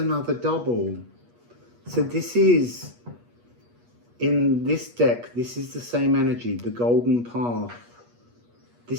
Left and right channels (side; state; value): left; late; 8.4 ms